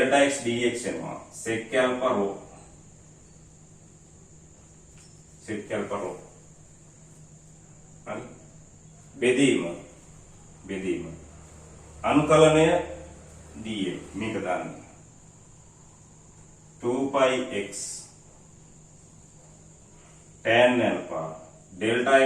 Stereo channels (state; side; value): identical; both; correlation 1.00